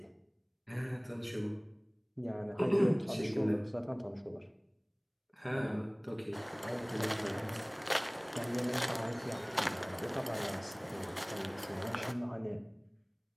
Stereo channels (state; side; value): identical; both; correlation 1.00